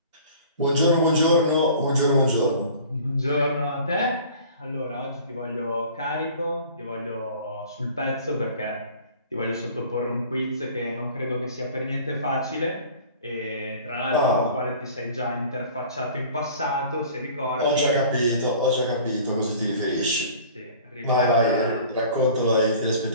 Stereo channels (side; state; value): both; inverted; correlation -0.46